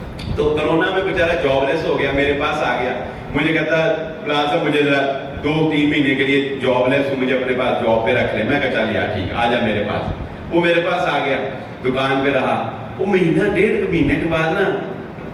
تو کرونا میں بیچارہ جاب لیس ہو گیا، میرے پاس آ گیا. مجھے کہتا برات صاحب مجھے ذرا 2-3 مہینے کے لیے جاب لیس ہوں، مجھے اپنے پاس جاب پہ رکھ لیں. میں کہا چل یار ٹھیک، آ جا میرے پاس. وہ میرے پاس آ گیا، دکان پہ رہا. وہ مہینہ 1.5 مہینے کے بعد نا،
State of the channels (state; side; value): identical; both; correlation 1.00